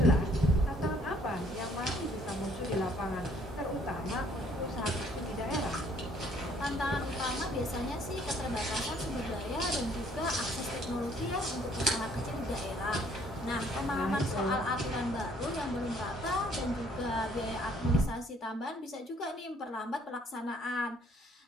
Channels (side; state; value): both; normal; correlation 0.62